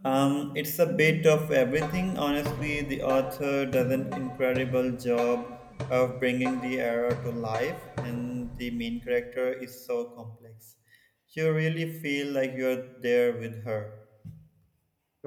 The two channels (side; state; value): both; identical; correlation 1.00